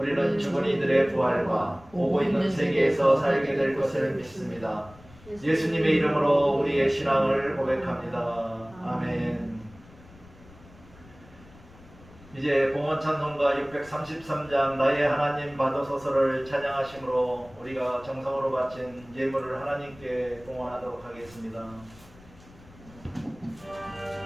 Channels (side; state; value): left; noise; rumble, 23 dB below the sound